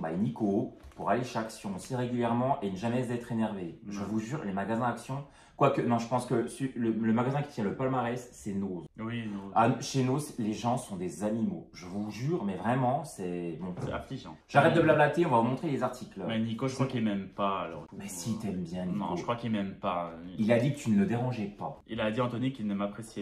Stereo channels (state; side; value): identical; both; correlation 1.00